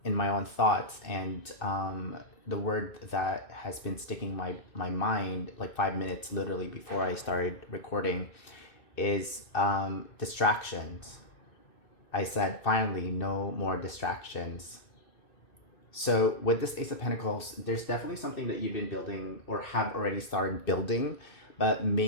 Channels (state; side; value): late; right; 2.6 ms